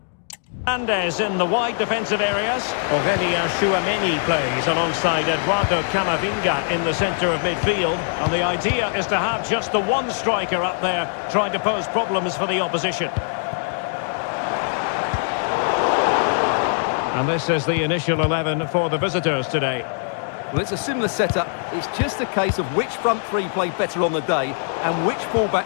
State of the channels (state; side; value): silent; right; digital silence